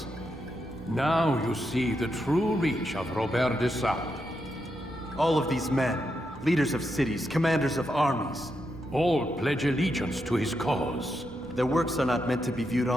Now you see the true reach of Robert de Sade. All of these men, leaders of cities, commanders of armies. All pledge allegiance to his cause. Their works are not meant to be viewed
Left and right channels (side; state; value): both; normal; correlation 0.83